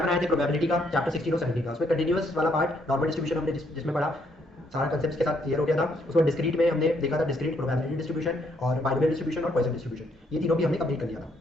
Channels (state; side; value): normal; both; correlation 0.71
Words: बनाए थे प्रोबेबिलिटी का चैप्टर 16 और 17 का, उसमें कंटीन्यूअस वाला पार्ट नॉर्मल डिस्ट्रीब्यूशन हमने जिसमें पढ़ा, सारा कंसेप्ट के साथ क्लियर हो गया था। उसमें डिस्क्रीट में हमने देखा था डिस्क्रीट प्रोबेबिलिटी डिस्ट्रीब्यूशन और बाइनरी डिस्ट्रीब्यूशन और पॉइसन डिस्ट्रीब्यूशन, ये तीनों भी हमने कंप्लीट कर लिया था।